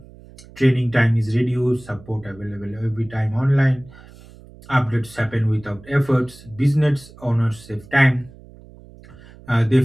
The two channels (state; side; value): noise; right; hum, 21 dB below the sound